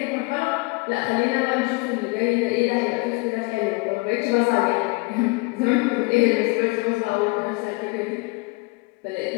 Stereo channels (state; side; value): quieter; right; 26.6 dB